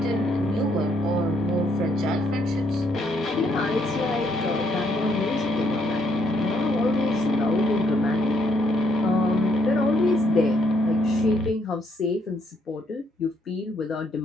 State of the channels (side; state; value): both; normal; correlation 0.72